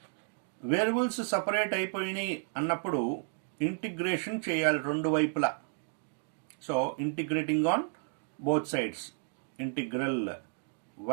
వేరియబుల్స్ సపరేట్ అయిపోయినాయి అన్నప్పుడు ఇంటిగ్రేషన్ చేయాలి రెండు వైపులా. So integrating on both sides, integral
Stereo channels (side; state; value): left; silent; 56 dB below the other